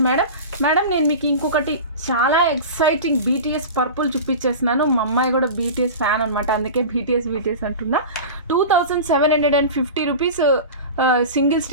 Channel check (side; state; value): both; inverted; correlation -0.31